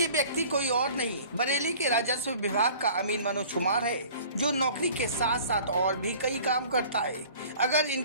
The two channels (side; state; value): both; inverted; correlation -0.47